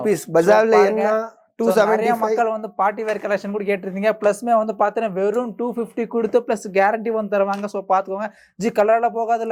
பஜார்ல என்ன 275. மக்கள் வந்து பார்ட்டி வேர் கலெக்ஷன் கூட கேட்டிருந்தீங்க. பிளஸ்மே வந்து பாத்தீங்கன்னா வெறும் 250 கொடுத்து பிளஸ் கேரண்டி வந்து தருவாங்க. சோ பாத்துக்கோங்க ஜி, கலர்ல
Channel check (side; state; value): both; identical; correlation 1.00